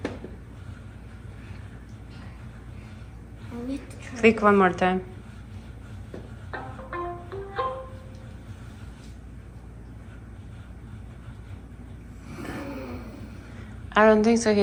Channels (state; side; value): identical; both; correlation 1.00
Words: Click one more time. I don't think so.